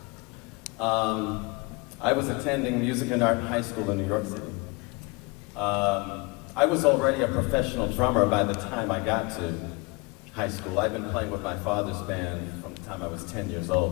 I was attending music and art high school in New York City. I was already a professional drummer by the time I got to high school. I've been playing with my father's band from the time I was 10 years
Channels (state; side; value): quieter; right; 27.4 dB